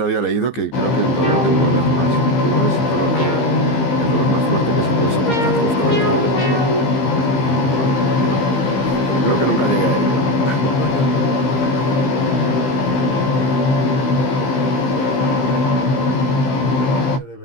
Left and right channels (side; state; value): right; late; 15 ms